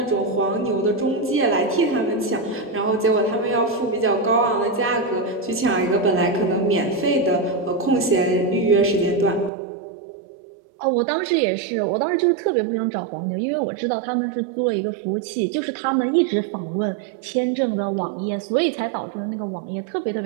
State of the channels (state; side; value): drops out; left; at 9.5 s